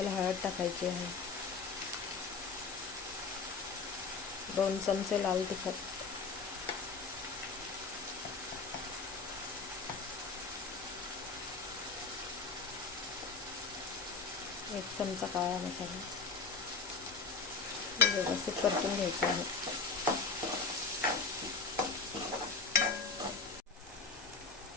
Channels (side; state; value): right; quieter; 4.4 dB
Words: हळद टाकायची आहे. 2 चमचे लाल तिखट, 1 चमचा काळा मसाला. व्यवस्थित परतून घ्यायचं आहे.